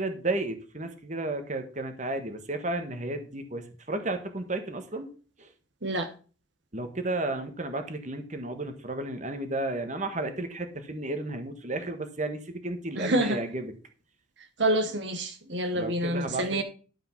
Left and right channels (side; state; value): both; normal; correlation 0.19